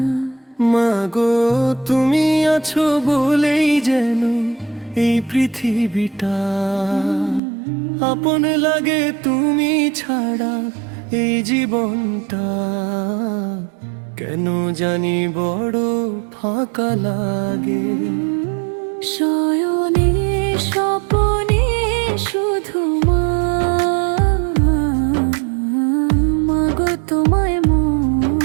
মা গো, তুমি আছো বলেই যেন এই পৃথিবীটা আপন লাগে, তুমি ছাড়া এই জীবনটা কেন জানি বড় ফাঁকা লাগে। শয়নে স্বপনে শুধু মা, মাগো তোমায়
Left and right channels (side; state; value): left; drops out; at 7.4 s